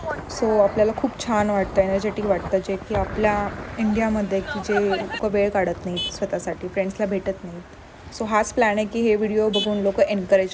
सो आपल्याला खूप छान वाटतं, एनर्जेटिक वाटतं, जे की आपल्या इंडियामध्ये की जे लोक वेळ काढत नाहीत स्वतःसाठी, फ्रेंड्सला भेटत नाहीत. सो हाच प्लॅन आहे की हे व्हिडिओ बघून लोक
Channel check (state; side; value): identical; both; correlation 1.00